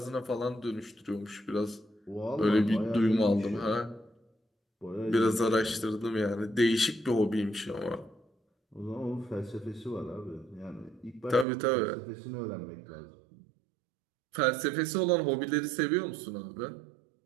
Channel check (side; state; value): left; drops out; at 11.5 s